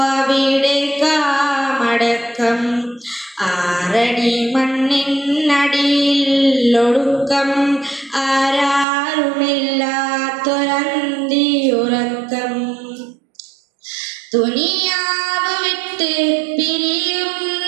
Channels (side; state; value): left; drops out; at 8.8 s